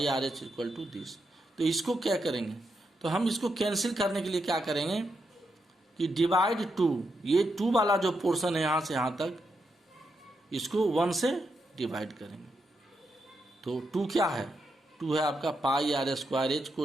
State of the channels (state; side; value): normal; both; correlation 0.83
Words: RH equal to this. तो इसको क्या करेंगे, तो हम इसको कैंसिल करने के लिए क्या करेंगे कि डिवाइड 2, ये 2 वाला जो पोर्शन है यहाँ से यहाँ तक, इसको 1 से डिवाइड करेंगे। तो 2 क्या है, 2 है आपका पाई RS स्क्वायर H को